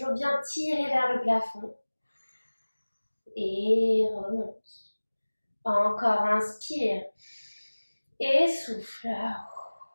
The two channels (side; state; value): both; inverted; correlation -1.00